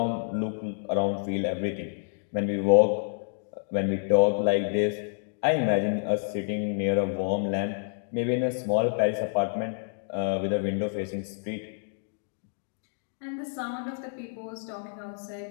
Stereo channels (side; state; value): right; silent; digital silence